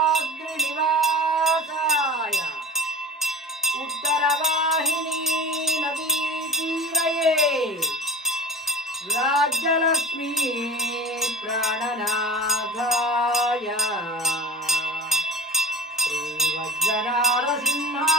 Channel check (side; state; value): both; normal; correlation 0.35